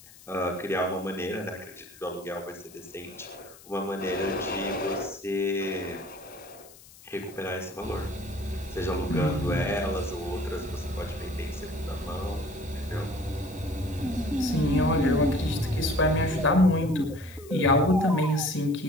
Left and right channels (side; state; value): left; noise; hiss, 21 dB below the sound